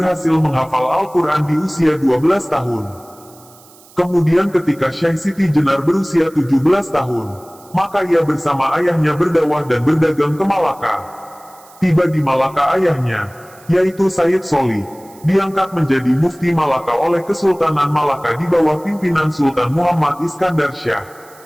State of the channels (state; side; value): noise; right; hiss, 25 dB below the sound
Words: menghafal Al-Quran di usia 12 tahun. Kemudian ketika Syekh Siti Jenar berusia 17 tahun, maka ia bersama ayahnya berdakwah dan berdagang ke Malaka. Tiba di Malaka ayahnya, yaitu Sayyid Soli, diangkat menjadi mufti Malaka oleh Kesultanan Malaka di bawah pimpinan Sultan Muhammad Iskandar Syah.